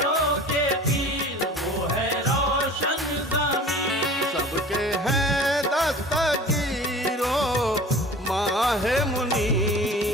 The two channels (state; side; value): normal; both; correlation 0.42